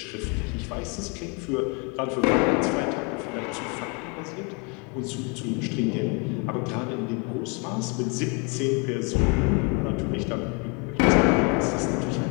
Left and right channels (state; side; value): quieter; right; 33.3 dB